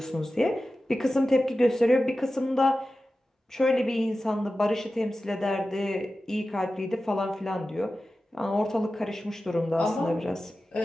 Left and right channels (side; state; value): both; normal; correlation 0.94